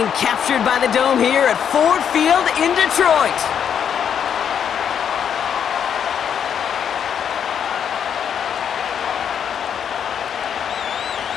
captured by the Dome here at Ford Field in Detroit.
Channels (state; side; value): quieter; right; 8.3 dB